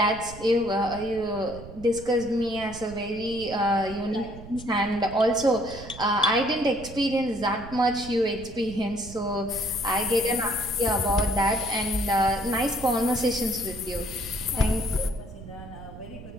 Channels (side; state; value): right; noise; rumble, 15 dB below the sound